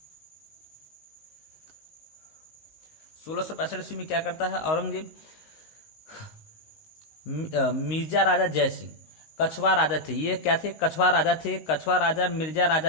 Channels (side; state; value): right; late; 19 ms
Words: ईस्वी में क्या करता है औरंगजेब, मिर्जा राजा जय सिंह, कछवा राजा थे, ये क्या थे, कछवा राजा मिर्जा